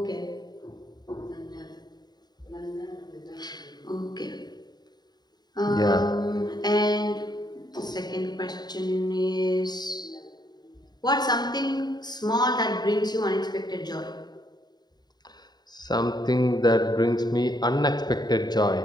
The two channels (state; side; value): late; right; 0.20 ms